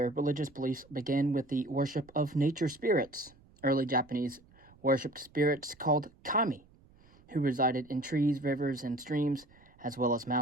religious beliefs began with the worship of nature spirits. Early Japanese worshipped spirits called kami, who resided in trees, rivers, and streams, as well as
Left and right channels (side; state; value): right; noise; rumble, 27 dB below the sound